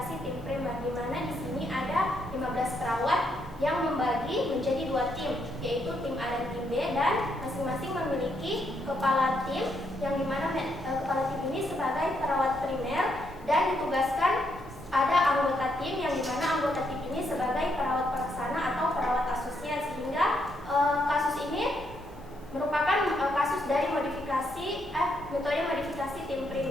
tim primer, di mana di sini ada 15 perawat yang membagi menjadi 2 tim, yaitu tim A dan tim B, dan masing-masing memiliki kepala tim, yang dimana kepala tim ini sebagai perawat primer, dan ditugaskan ada anggota tim yang dimana anggota tim ini sebagai perawat pelaksana atau perawat asosiat, sehingga kasus ini merupakan kasus dari metode modifikasi tim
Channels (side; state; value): both; normal; correlation 0.77